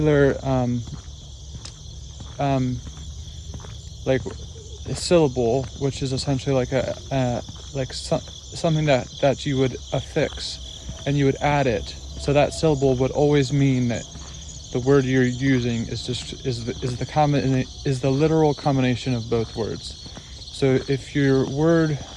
like a syllable, which is essentially like something that you would affix and you would add it. So that syllable would always mean that the word you're using is the literal combination of both words. So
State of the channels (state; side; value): identical; both; correlation 1.00